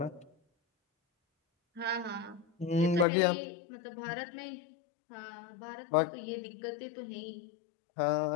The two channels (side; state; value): right; drops out; at 3.1 s